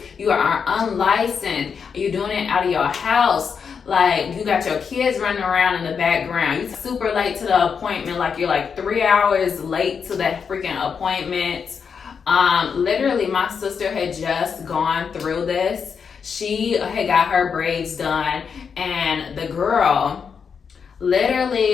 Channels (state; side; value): quieter; right; 6.3 dB